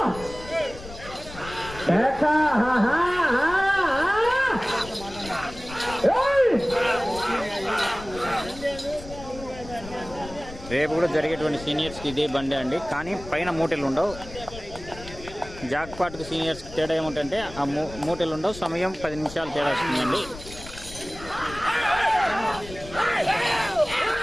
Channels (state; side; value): noise; left; rumble, 15 dB below the sound